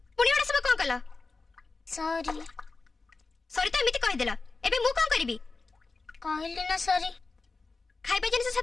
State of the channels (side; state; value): right; quieter; 3.9 dB